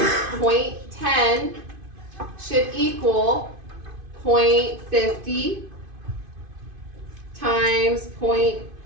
should equal 0.50 times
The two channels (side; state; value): left; late; 2.5 ms